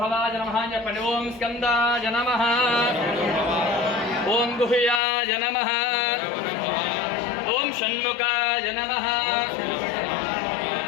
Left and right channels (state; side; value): drops out; right; at 5.0 s